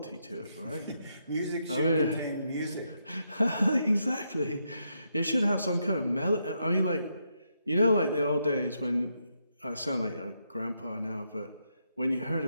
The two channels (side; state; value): both; inverted; correlation -0.80